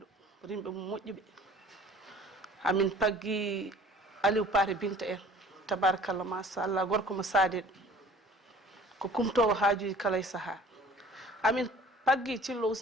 rimɓe mum moƴƴuɓe amin paggi Aliou Paté Binta en tabarakallah machallah gorko mo saadiɗo ko kumtowo haajuji kala e saaha amin paggi Thillo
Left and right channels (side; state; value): both; normal; correlation 0.49